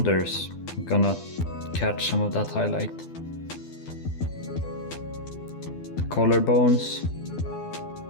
I'm gonna catch some of that highlight. The collarbones,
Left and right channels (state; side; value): late; right; 12 ms